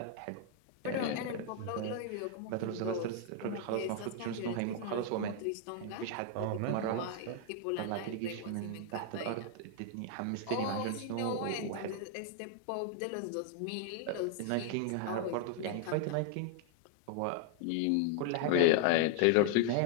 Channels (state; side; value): different; both; correlation 0.00